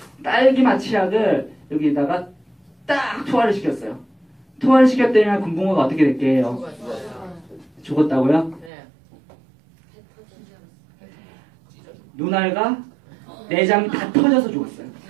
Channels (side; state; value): left; drops out; at 8.7 s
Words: 딸기맛 치약을 여기다가 딱 투하를 시켰어요. 투하를 시켰더니 금붕어가 어떻게 될게요? 죽었다고요? 네. 눈알과 내장이 다 터져서 죽었어요.